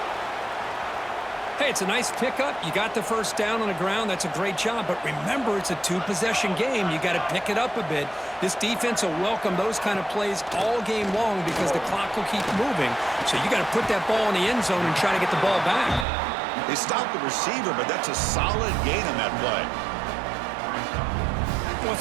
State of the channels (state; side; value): drops out; left; at 16.1 s